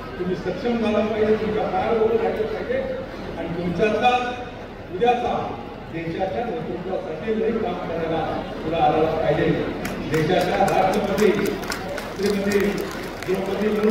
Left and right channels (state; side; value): identical; both; correlation 1.00